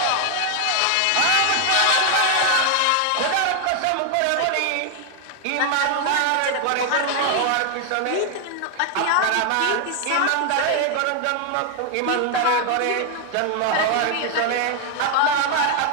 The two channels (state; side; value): different; both; correlation 0.00